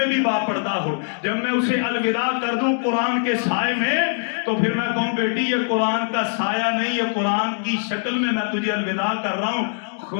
بھی باپردہ ہو، جب میں اسے الوداع کر دوں قرآن کے سائے میں تو پھر میں کہوں بیٹی یہ قرآن کا سایہ نہیں، یہ قرآن کی شکل میں تجھے الوداع کر رہا ہوں.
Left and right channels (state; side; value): silent; right; 64 dB below the other